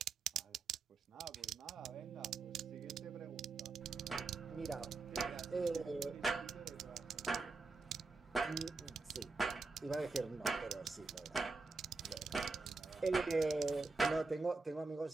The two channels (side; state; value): left; quieter; 3.9 dB